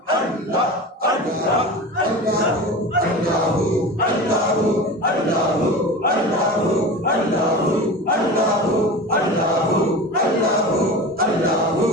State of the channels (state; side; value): normal; both; correlation 0.31